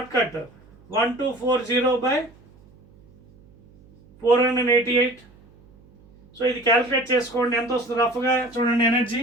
cut 1240 by 488. సో ఇది క్యాలిక్యులేట్ చేసుకోండి, ఎంత వస్తుంది రఫ్గా చూడండి. Energy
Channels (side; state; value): right; noise; hum, 27 dB below the sound